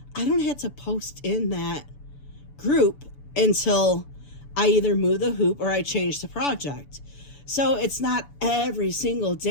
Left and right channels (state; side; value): late; right; 6.9 ms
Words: I don't have to post in that group until I either move the hoop or I change the project. So it's not every single